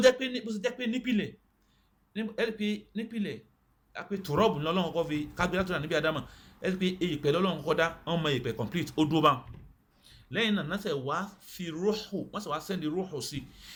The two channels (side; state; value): both; identical; correlation 1.00